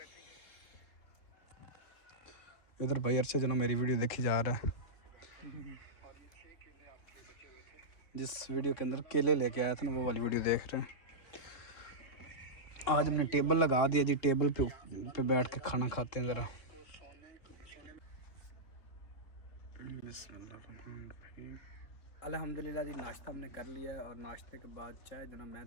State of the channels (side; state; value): right; late; 3.7 ms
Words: इधर भाई अरशद जो ना मेरी वीडियो देखी जा रहा है, जिस वीडियो के अंदर केले लेके आया था ना वो वाली वीडियो देख रहे हैं। आज हमने टेबल लगा दिया जी, टेबल पे बैठ के खाना खाते हैं ज़रा। अल्हम्दुलिल्लाह जी, नाश्ता हमने कर लिया है और नाश्ते के बाद चाय जो ना मैं